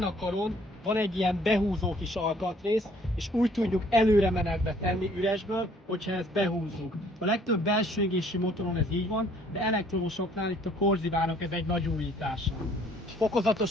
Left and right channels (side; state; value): both; normal; correlation 0.60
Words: a karon van egy ilyen behúzó kis alkatrész, és úgy tudjuk előre menetbe tenni üresből, hogyha ezt behúzzuk. A legtöbb belső égésű motoron ez így van, de elektromosoknál itt a Corsivának ez egy nagy újítása.